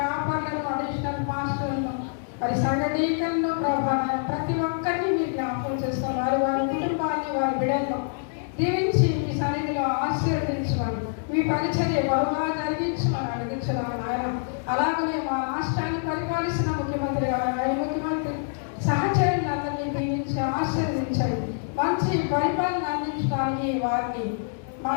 అడిషనల్ మాస్టర్లను, మరి సంఘ డీకన్ను ప్రభా, ప్రతి ఒక్కరిని మీరు జ్ఞాపకం చేసుకోండి. వారి వారి కుటుంబాన్ని, వారి బిడ్డలను దీవించి మీ సన్నిధిలో ఆశీర్వదించమని, మీ పరిచర్య బహుగా జరిగించమని అడిగించున్నాను ఆయన. అలాగనే మా రాష్ట్రాన్ని పరిపాలిస్తున్న ముఖ్యమంత్రి గారు, ముఖ్యమంత్రి సహచరులందరినీ దీవించి ఆశీర్వదించండి. మంచి పరిపాలన అందించడానికి వారిని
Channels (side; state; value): right; silent; digital silence